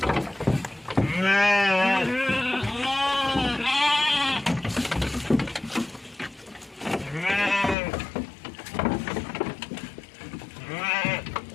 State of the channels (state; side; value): drops out; right; at 7.8 s